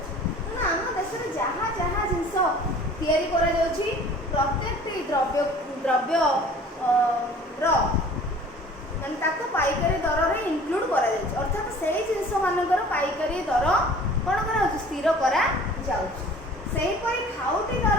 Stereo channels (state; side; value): normal; both; correlation 0.48